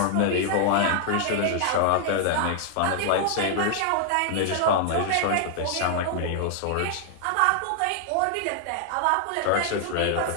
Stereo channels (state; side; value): different; both; correlation 0.00